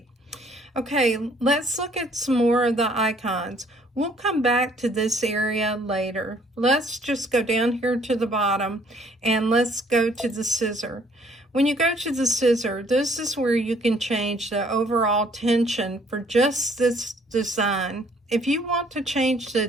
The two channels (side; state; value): both; normal; correlation 0.61